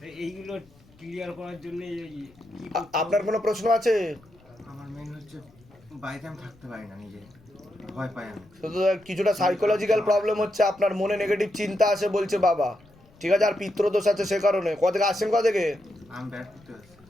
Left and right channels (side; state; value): left; noise; rumble, 28 dB below the sound